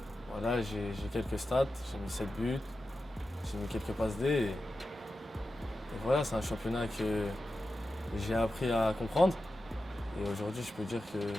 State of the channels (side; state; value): both; normal; correlation 0.92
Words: Voilà, j'ai quelques stats, j'ai mis 7 buts, j'ai mis quelques passes D. Et voilà, c'est un championnat que j'ai appris à comprendre. Et aujourd'hui, je peux dire que